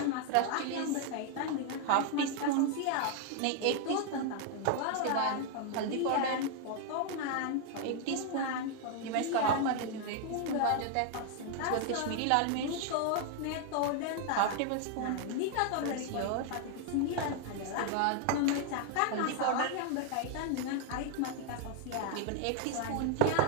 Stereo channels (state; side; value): different; both; correlation 0.00